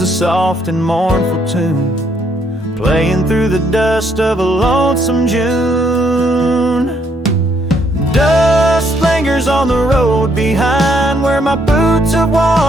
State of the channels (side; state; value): both; normal; correlation 0.71